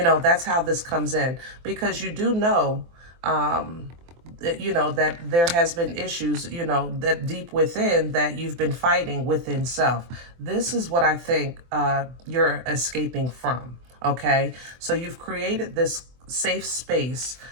know, that's how this comes in. Because you do know, you know, that there has been issues, you know, that deep within that you've been fighting within self. This is what I think you're escaping from, okay? So you've created this safe space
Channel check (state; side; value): late; left; 24 ms